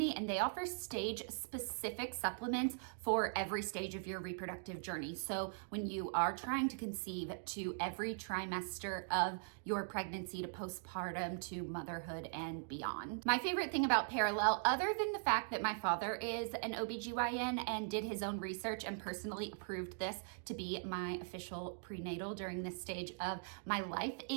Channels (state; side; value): silent; left; digital silence